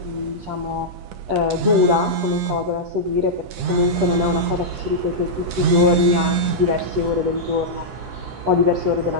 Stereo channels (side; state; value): left; late; 10 ms